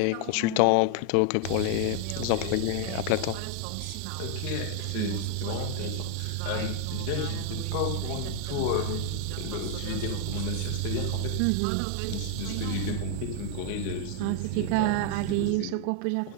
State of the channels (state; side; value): different; both; correlation 0.00